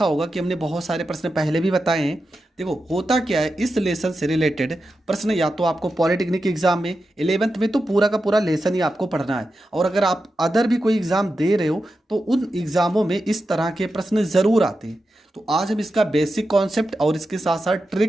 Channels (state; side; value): normal; both; correlation 0.90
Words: होगा कि हमने बहुत सारे प्रश्न पहले भी बताए हैं। देखो, होता क्या है, इस लेसन से रिलेटेड प्रश्न या तो आपको पॉलिटेक्निक एग्जाम में 11th में तो पूरा का पूरा लेसन ही आपको पढ़ना है, और अगर आप अदर भी कोई एग्जाम दे रहे हो तो उन एग्जामों में इस तरह के प्रश्न ज़रूर आते हैं। तो आज हम इसका बेसिक कॉन्सेप्ट और इसके साथ साथ